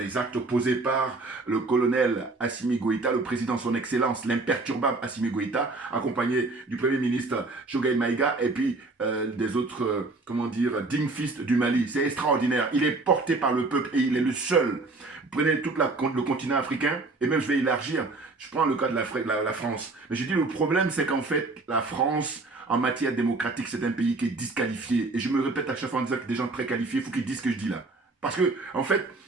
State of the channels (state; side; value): quieter; left; 3.4 dB